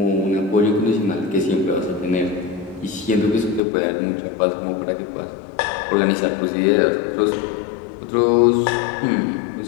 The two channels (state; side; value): drops out; right; at 3.6 s